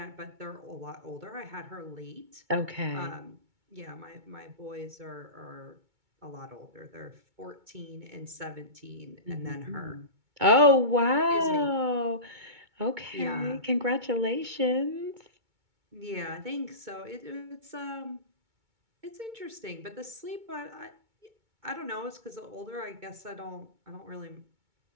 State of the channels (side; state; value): left; late; 2.2 ms